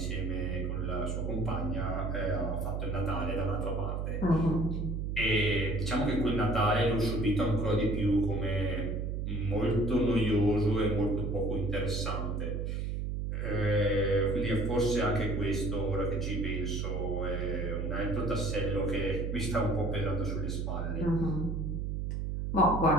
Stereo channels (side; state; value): right; noise; hum, 2 dB below the sound